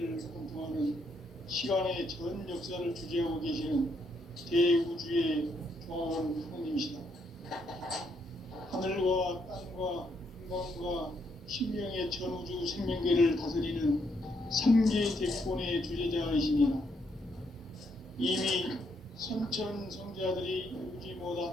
관통하는 시간의 전 역사를 주재하고 계시는 대우주의 종합원 하나님이시다. 하늘과 땅과 인간과 신명의 전우주 생명계를 다스리는 삼계 대권의 주제자이시니라. 이미 선천 성자들이 이루지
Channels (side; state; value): both; normal; correlation 0.75